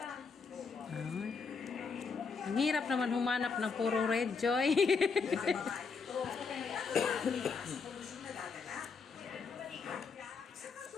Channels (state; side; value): quieter; right; 5.1 dB